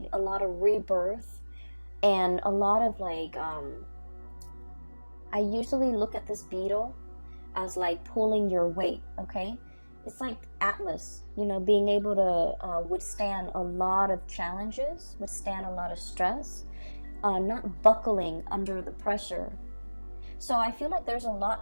a lot of rebirth, and a lot of like I usually look at this beetle as like pulling your weight. Okay, it's like Atlas, you know, being able to withstand a lot of challenges, withstand a lot of stress, not buckling under the pressure. So I feel like there's a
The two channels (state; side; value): inverted; both; correlation -1.00